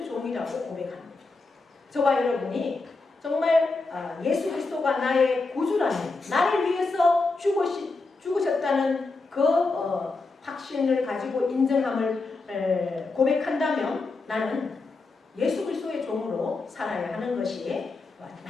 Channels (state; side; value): quieter; right; 3.7 dB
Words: 종이라고 고백합니다. 저와 여러분이 정말 예수 그리스도가 나의 구주라는, 나를 위해서 죽으셨다는 그 확신을 가지고 인정함을 고백한다면 나는 예수 그리스도의 종으로 살아야 하는 것이